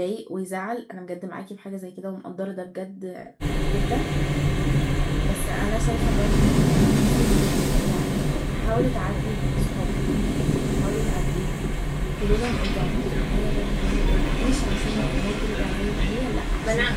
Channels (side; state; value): both; identical; correlation 1.00